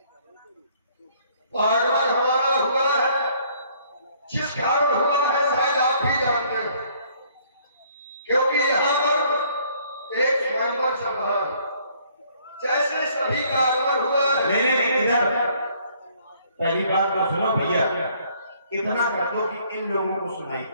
आगमन हमारा हुआ है, जिस कारण हुआ है शायद आप भी जानते हो, क्योंकि यहाँ पर एक स्वयंवर चल रहा है। जैसे सभी का आगमन हुआ है। इधर पहली बात तो सुनो भैया, इतना कर दो कि इन लोगों को सुनाई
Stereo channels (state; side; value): inverted; both; correlation -0.62